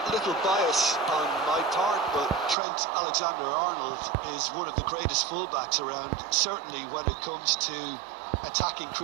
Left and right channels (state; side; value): drops out; left; at 2.6 s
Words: A little bias on my part, but Trent Alexander-Arnold is one of the greatest fullbacks around, certainly when it comes to attacking